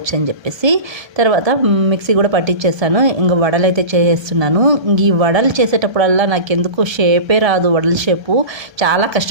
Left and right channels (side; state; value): left; late; 1.3 ms